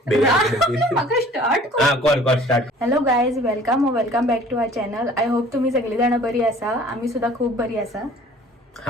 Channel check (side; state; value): both; normal; correlation 0.51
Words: start. Hello guys, welcome back to our channel. I hope तुम्ही सगळे जण बरी आसा. आम्ही सुद्धा खूप बरी आसा.